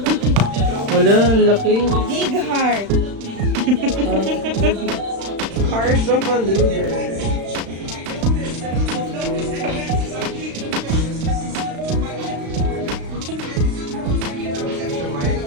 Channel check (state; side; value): late; left; 36 ms